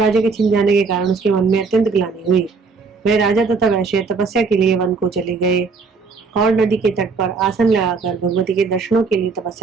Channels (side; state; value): left; quieter; 4.7 dB